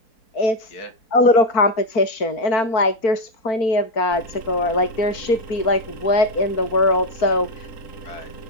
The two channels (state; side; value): late; right; 4.5 ms